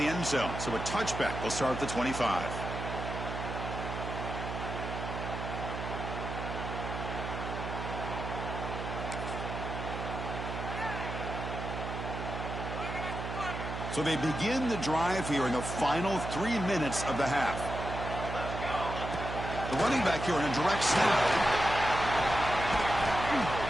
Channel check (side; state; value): right; noise; hum, 5 dB below the sound